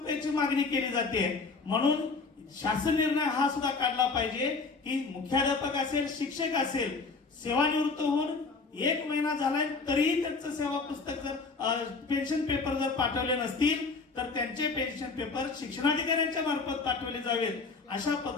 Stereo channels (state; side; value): quieter; right; 4.3 dB